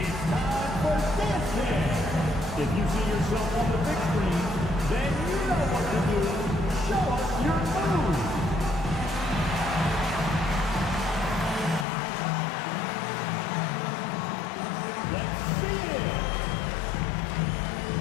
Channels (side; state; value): right; drops out; at 11.9 s